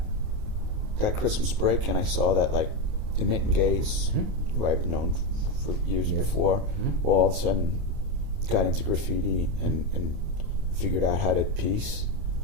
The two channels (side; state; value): left; late; 28 ms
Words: Christmas break, and I saw that like Emit and Gaze, who I've known for years before, well, all of a sudden got into graffiti and figured out how to piece.